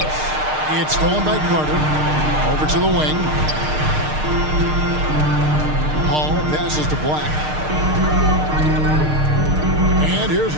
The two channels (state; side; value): late; left; 6.6 ms